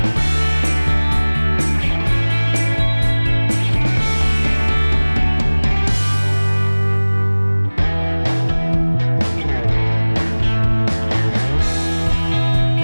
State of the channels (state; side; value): inverted; both; correlation -1.00